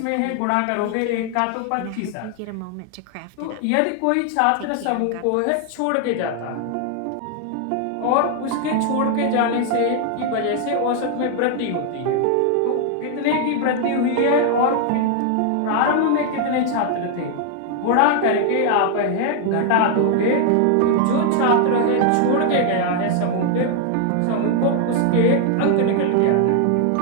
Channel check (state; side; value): different; both; correlation 0.00